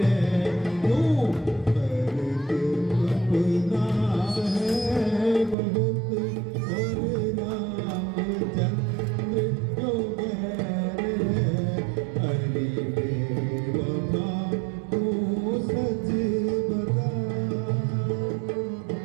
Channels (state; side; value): drops out; left; at 5.6 s